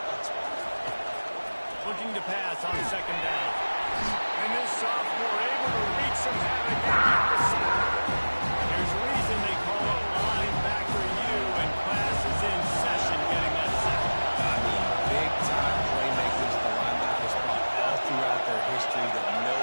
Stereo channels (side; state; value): both; inverted; correlation -1.00